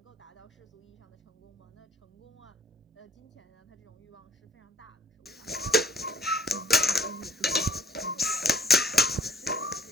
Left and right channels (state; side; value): normal; both; correlation 0.57